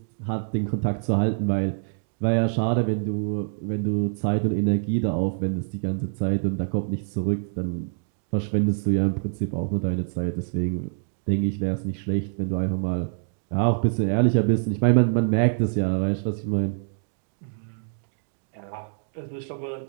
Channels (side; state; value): left; silent; digital silence